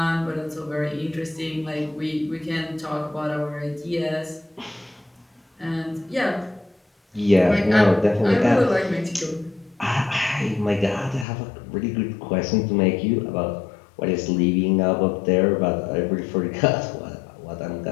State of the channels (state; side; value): drops out; right; at 11.2 s